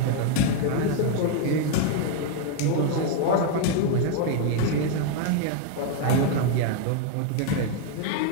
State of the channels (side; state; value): both; different; correlation 0.00